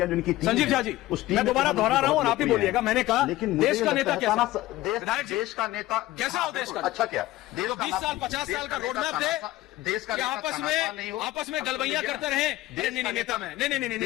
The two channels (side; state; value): right; quieter; 16.8 dB